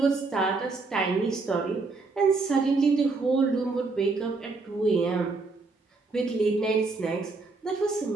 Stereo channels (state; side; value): quieter; left; 3.8 dB